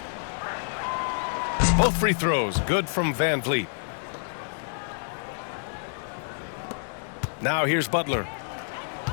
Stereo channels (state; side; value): silent; right; digital silence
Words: Both free throws good from Van Vliet. Now here's Butler.